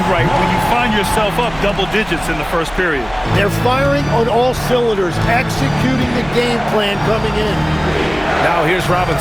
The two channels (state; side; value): noise; right; hum, 19 dB below the sound